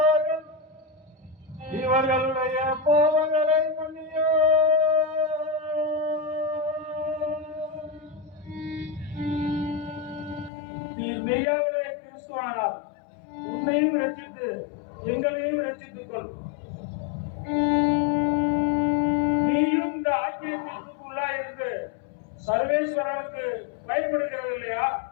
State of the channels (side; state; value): right; drops out; at 10.5 s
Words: இவர்களுடைய பாவங்களை மன்னியோ. நீர் மெய்யாகவே கிறிஸ்துவானார். உன்னையும் ரட்சித்து எங்களையும் ரட்சித்துக் கொள். நீயும் இந்த ஆக்கிய தீர்ப்புக்குள்ளா இருந்து சர்வேஸ்வரனுக்கு பயப்படுகிறது இல்லையா?